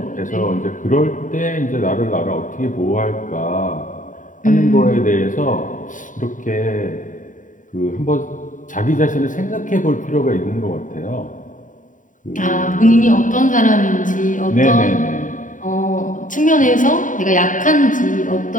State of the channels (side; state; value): right; late; 0.38 ms